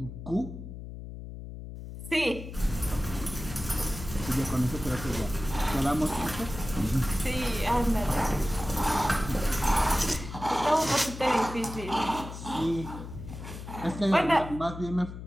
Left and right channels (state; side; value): noise; left; hum, 10 dB below the sound